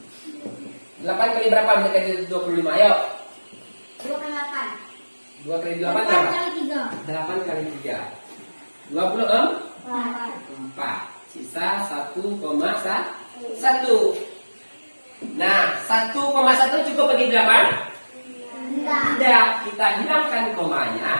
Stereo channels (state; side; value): inverted; both; correlation -1.00